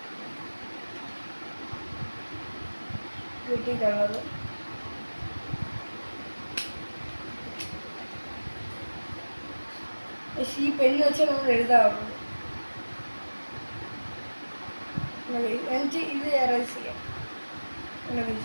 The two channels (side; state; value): both; inverted; correlation -1.00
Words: കിട്ടിയിട്ടുള്ളത് ഈ പെണ്ണ് വെച്ചാൽ നമ്മൾ എഴുതാറുള്ളൂ. എന്നിട്ട് ഇത് എറേസ് ചെയ്യാം.